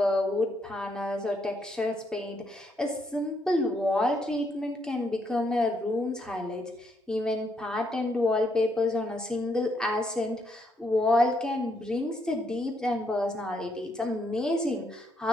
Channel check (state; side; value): normal; both; correlation 0.75